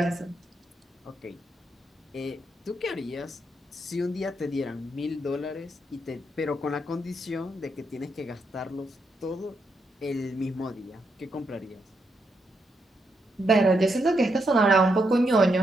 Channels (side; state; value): both; normal; correlation 0.80